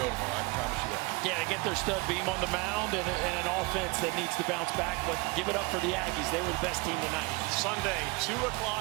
go tomorrow. I can promise you that. Yeah, they get their stud beam on the mound and an offense that needs to bounce back, but give it up for the Aggies. They were the best team tonight. Sunday, 2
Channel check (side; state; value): left; quieter; 26.2 dB